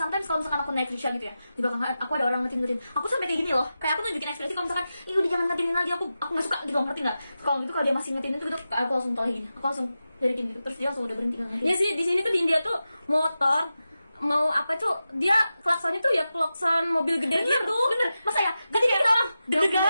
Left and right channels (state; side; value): inverted; both; correlation -0.92